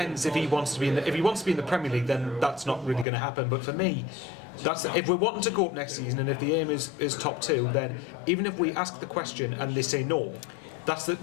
if he wants to be in the Premier League, then that's not really going to happen. But for me, that's if we're wanting to go up next season, and if the aim is top 2, then even if we ask the question and they say no. That's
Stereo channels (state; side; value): drops out; right; at 3.1 s